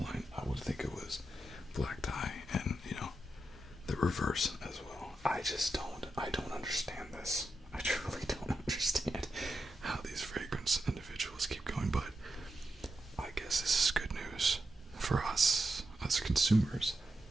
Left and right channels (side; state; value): both; normal; correlation 0.87